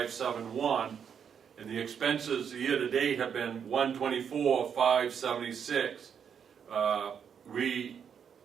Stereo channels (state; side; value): quieter; left; 7.6 dB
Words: and the expenses year to date have been $124,576. We